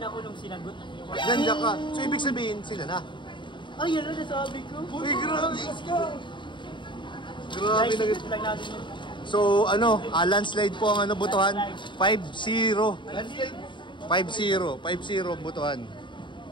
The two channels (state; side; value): late; right; 0.23 ms